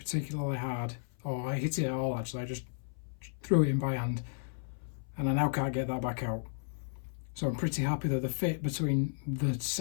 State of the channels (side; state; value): right; silent; 55 dB below the other